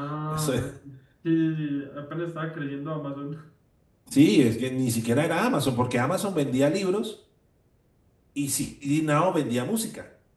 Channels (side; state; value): both; identical; correlation 1.00